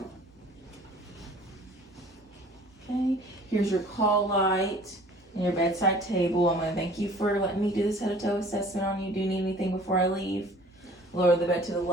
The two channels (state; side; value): normal; both; correlation 0.50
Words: Okay, here's your call light and your bedside table. I'm going to thank you for letting me do this head to toe assessment on you. Do you need anything before I leave? Lower the bed to the